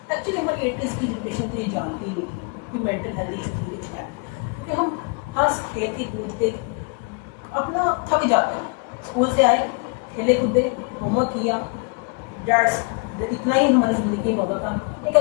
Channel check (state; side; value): quieter; right; 33.3 dB